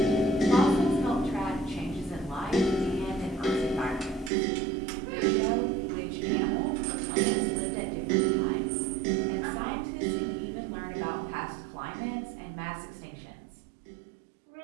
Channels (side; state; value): left; drops out; at 4.3 s